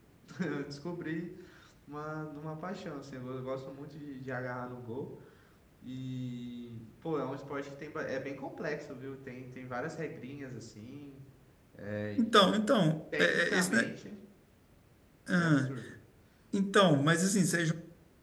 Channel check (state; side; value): identical; both; correlation 1.00